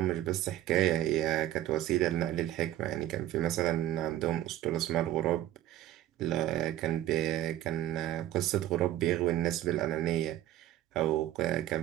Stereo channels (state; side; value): quieter; left; 13.3 dB